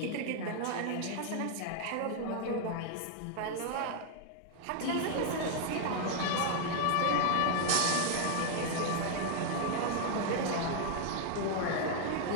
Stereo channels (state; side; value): different; both; correlation 0.00